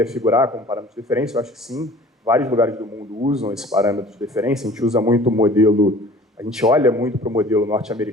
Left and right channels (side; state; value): both; normal; correlation 0.47